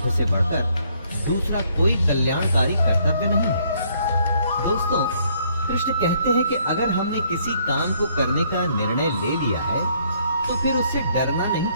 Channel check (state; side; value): inverted; both; correlation -0.67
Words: से बढ़कर दूसरा कोई कल्याणकारी कर्तव्य नहीं है। दोस्तों, कृष्ण कहते हैं कि अगर हमने किसी काम को करने का निर्णय ले लिया है तो फिर उससे डरना नहीं